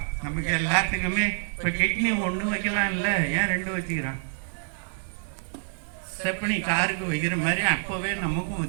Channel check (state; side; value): silent; left; digital silence